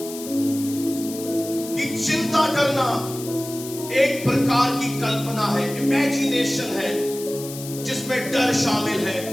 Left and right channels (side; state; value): left; noise; hiss, 12 dB below the sound